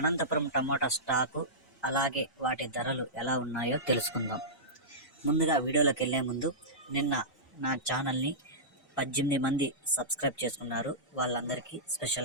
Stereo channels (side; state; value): both; normal; correlation -0.16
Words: టమోటా స్టాకు అలాగే వాటి ధరలు ఎలా ఉన్నాయో తెలుసుకుందాం. ముందుగా వీడియోలోకి వెళ్ళే ముందు నిన్న నా ఛానల్ని 18 మంది సబ్స్క్రైబ్ చేసుకున్నారు. వాళ్ళందరికీ